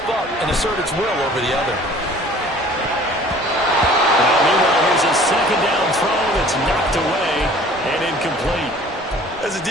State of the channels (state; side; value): normal; both; correlation 0.50